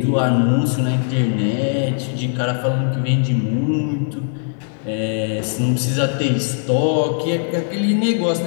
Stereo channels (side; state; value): right; silent; 57 dB below the other